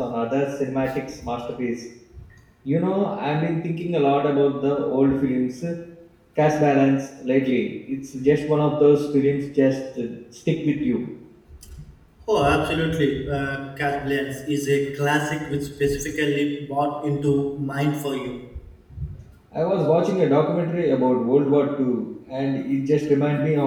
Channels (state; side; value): identical; both; correlation 1.00